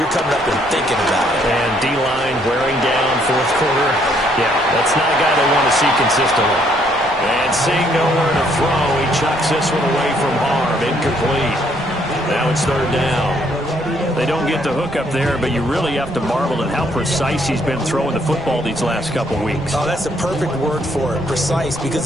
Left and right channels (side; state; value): right; noise; rumble, 21 dB below the sound